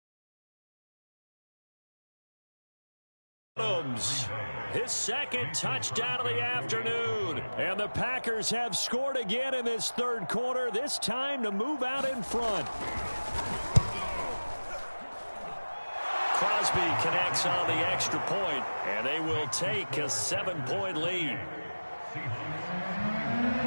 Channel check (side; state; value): both; inverted; correlation -1.00